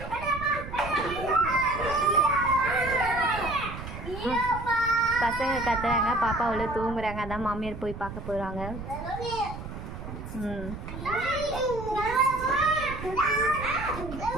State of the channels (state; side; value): noise; right; rumble, 10 dB below the sound